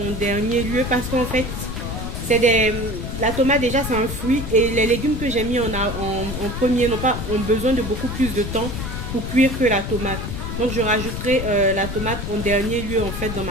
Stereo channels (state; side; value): noise; left; rumble, 5 dB below the sound